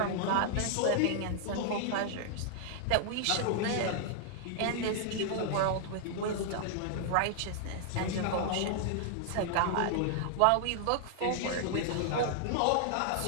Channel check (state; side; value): different; both; correlation -0.01